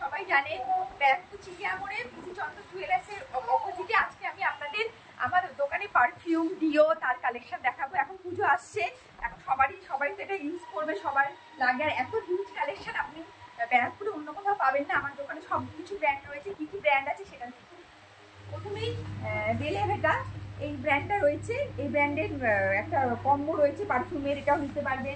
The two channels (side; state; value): both; identical; correlation 1.00